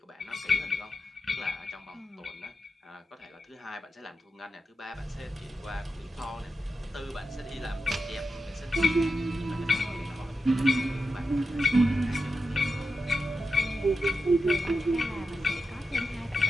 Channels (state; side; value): normal; both; correlation 0.89